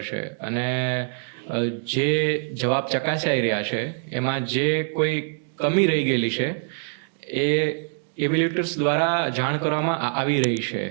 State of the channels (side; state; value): left; silent; digital silence